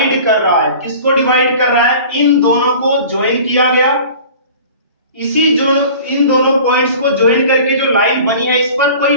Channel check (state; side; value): inverted; both; correlation -0.43